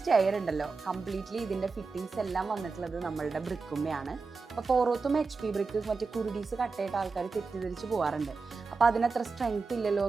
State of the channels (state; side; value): quieter; left; 4.4 dB